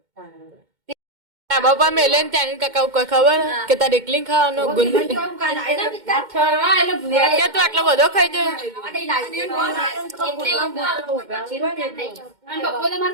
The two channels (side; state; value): left; late; 2.1 ms